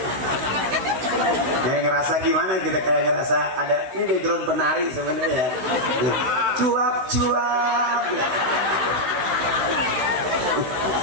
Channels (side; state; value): left; late; 16 ms